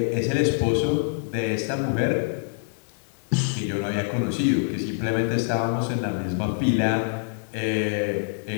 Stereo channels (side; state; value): right; silent; 62 dB below the other